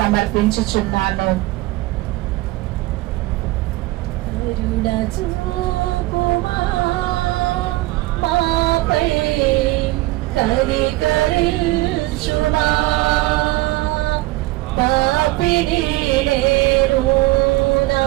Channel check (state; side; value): quieter; left; 19.6 dB